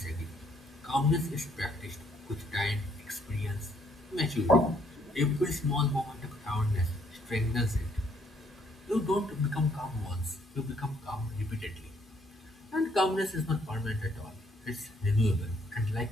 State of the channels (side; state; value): both; normal; correlation 0.68